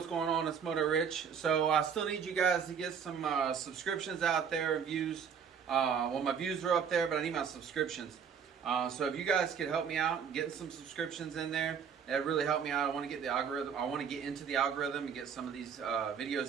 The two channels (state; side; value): quieter; left; 7.1 dB